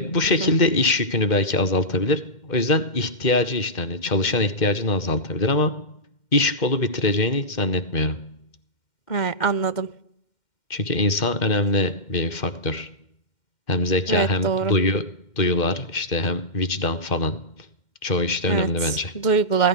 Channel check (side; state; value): right; late; 2.1 ms